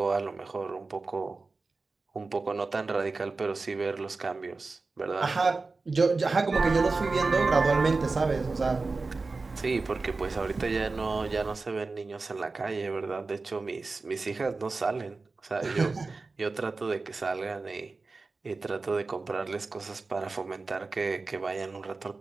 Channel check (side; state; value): left; quieter; 3.9 dB